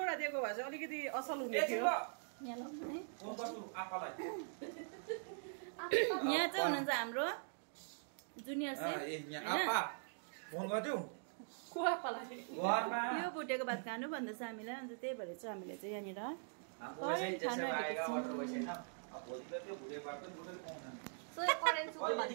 दिएको भए चाहिँ अलिकति असल हुने थियो। यहाँ चाहिँ हुनुहुन्छ हाम्रो जुनियर सेफ। यो भुटेको भात खानु भन्दैछ हामीलाई। अन्त त्यही भएर चाहिँ हामीले चाहिँ यहाँनिर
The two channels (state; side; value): silent; left; digital silence